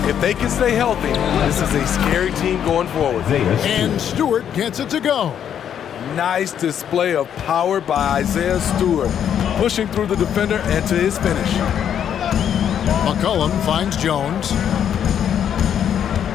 If they can stay healthy, this is a scary team going forward. And Stewart gets it to go. Nice display of power by Isaiah Stewart, pushing through the defender and to his finish. McCollum finds Jones.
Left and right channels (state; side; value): quieter; right; 9.1 dB